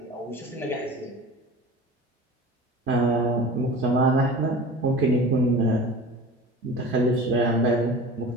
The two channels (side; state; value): both; normal; correlation 0.37